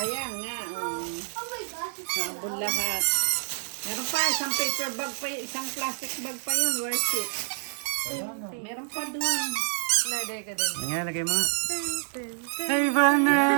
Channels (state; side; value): silent; left; digital silence